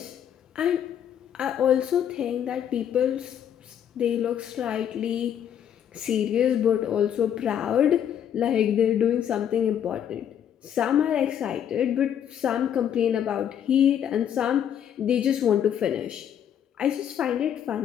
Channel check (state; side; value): quieter; right; 9.4 dB